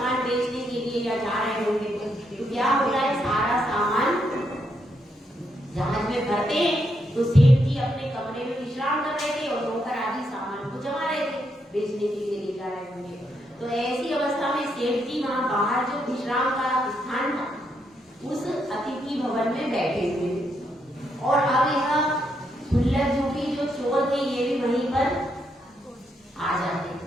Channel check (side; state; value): both; normal; correlation 0.79